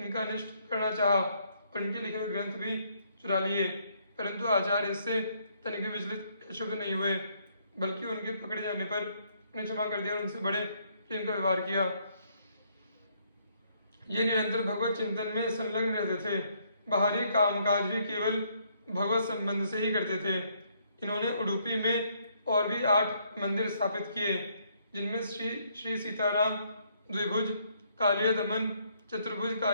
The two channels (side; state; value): both; inverted; correlation -0.70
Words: अनिष्ट करना चाहा और इनके लिखे हुए ग्रंथ भी चुरा लिए, परंतु आचार्य इससे तनिक भी विचलित शुभ नहीं हुए, बल्कि उनके पकड़े जाने पर उन्हें क्षमा कर दिया और उनसे बड़े प्रेम का व्यवहार किया। ये निरंतर भगवत चिंतन में संलग्न रहते थे। बाहरी कामकाज भी केवल भगवत संबंध से ही करते थे। इन्होंने उडुपी में और भी 8 मंदिर स्थापित किए, जिनमें श्री सीताराम, द्विभुज कालिय दमन, चतुर्भुज